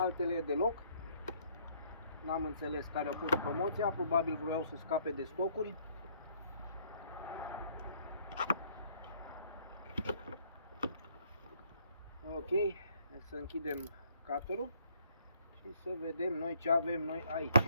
deloc. N-am înțeles care a fost promoția, probabil vreau să scape de stocuri. Ok, să închidem cutterul și să vedem noi ce avem noi aici.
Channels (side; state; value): both; inverted; correlation -0.65